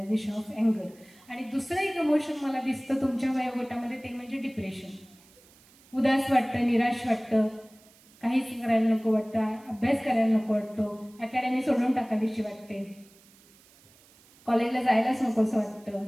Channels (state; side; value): noise; right; hiss, 27 dB below the sound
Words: of अँगर. आणि दुसरं एक इमोशन मला दिसतं तुमच्या वयोगटामध्ये, ते म्हणजे डिप्रेशन. उदास वाटतं, निराश वाटतं, काहीच करायला नको वाटतं, अभ्यास करायला नको वाटतो, अकॅडमी सोडून टाकावीशी वाटते, कॉलेजला जायलाच नको असं वाटतं.